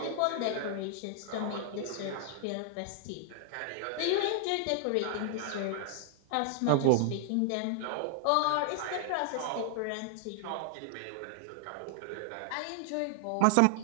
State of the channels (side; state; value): both; different; correlation 0.00